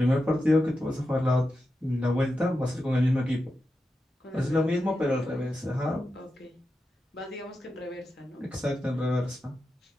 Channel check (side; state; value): both; normal; correlation 0.89